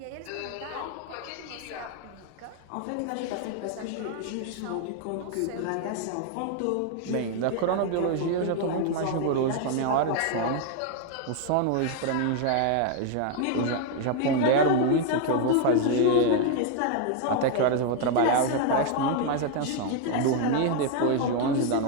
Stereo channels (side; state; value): both; different; correlation 0.01